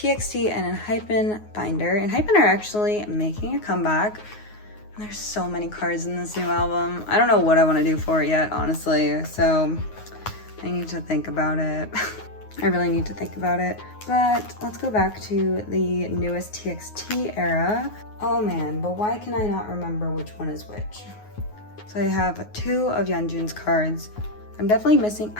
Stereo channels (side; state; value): right; late; 9.5 ms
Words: and Hypen binder. And Hypen are actually making a comeback. There's so many cards in this new album. I don't know what I want to do for it yet, honestly. So I need to think about it. I really need to think about it. But let's go back to the newest TXT era. Oh man, but why can I not remember which one is which? So I have 2 of Yeonjun's cards. I'm definitely missing,